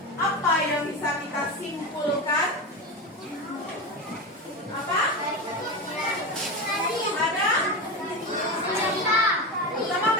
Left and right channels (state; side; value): normal; both; correlation 0.20